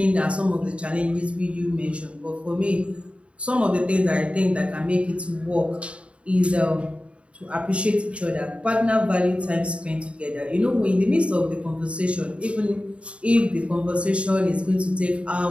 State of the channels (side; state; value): left; late; 0.061 ms